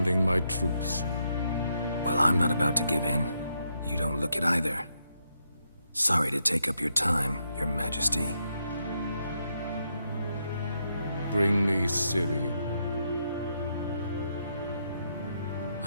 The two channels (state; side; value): inverted; both; correlation -0.79